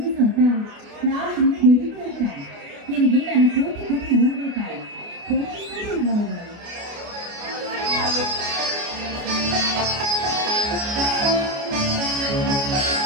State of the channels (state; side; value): late; left; 29 ms